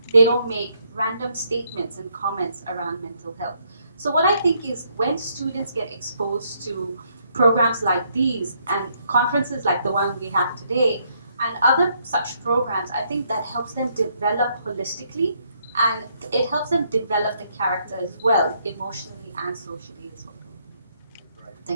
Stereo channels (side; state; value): both; inverted; correlation -0.72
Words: they don't make random statements and comments around mental health. So what I think is when students get exposed to programs like these and conferences like the one we have today and other such programs, I think that helps them develop holistically, and it helps them develop the character as well, emotionally and socially as well.